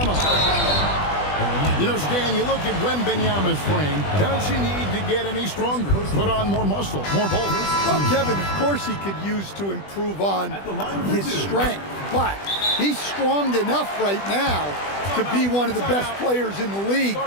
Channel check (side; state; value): right; late; 20 ms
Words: You know, Stan, you look at Wembanyama's frame. Does he need to get any stronger? Put on more muscle, more bulk? Well, Kevin, of course he could use to improve on his strength, but he's strong enough right now to be one of the best players in the league.